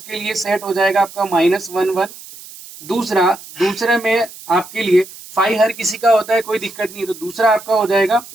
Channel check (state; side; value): noise; right; hiss, 17 dB below the sound